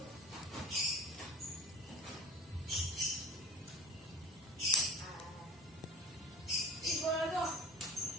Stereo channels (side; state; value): both; normal; correlation 0.34